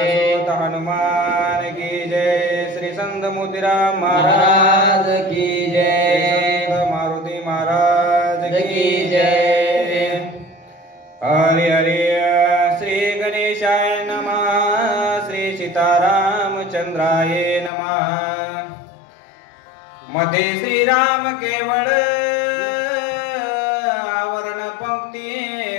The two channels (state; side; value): drops out; right; at 17.7 s